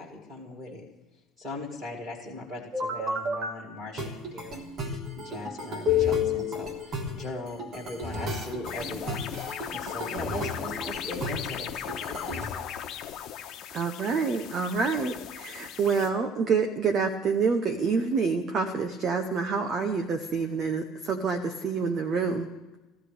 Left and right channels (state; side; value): normal; both; correlation 0.49